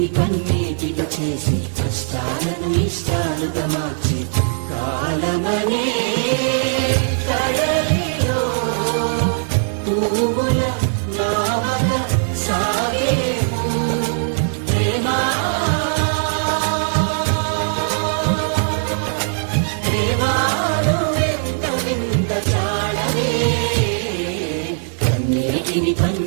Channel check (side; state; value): left; silent; 63 dB below the other